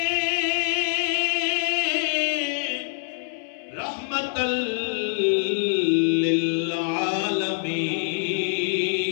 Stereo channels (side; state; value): right; silent; 62 dB below the other